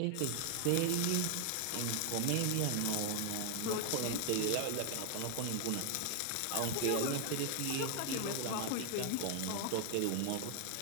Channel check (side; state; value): both; different; correlation 0.00